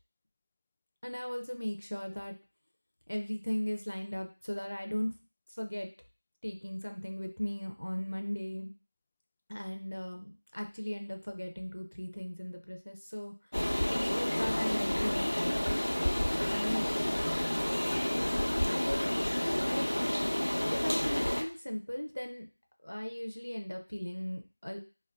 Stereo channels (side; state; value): both; inverted; correlation -1.00